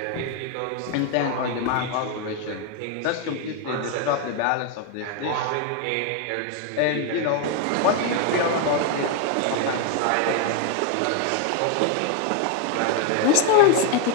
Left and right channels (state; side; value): different; both; correlation 0.01